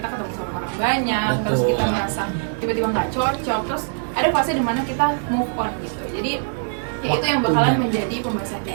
ketemu sama orang banyak, terus Betul. kita merasa tiba-tiba nggak cocok, terus ada fase dimana kita move on gitu. Jadi ya itu yang bakalan Waktunya. menjadi pembahasan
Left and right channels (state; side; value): silent; left; digital silence